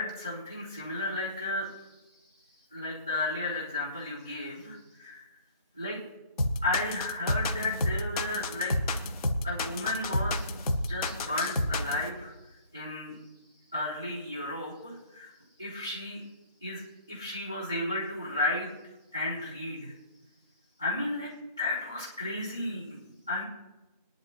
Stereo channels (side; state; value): both; inverted; correlation -0.50